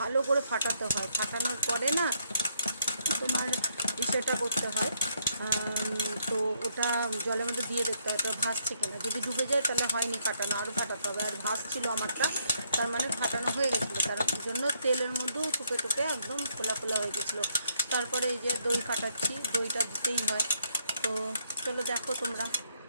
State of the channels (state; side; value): inverted; both; correlation -0.72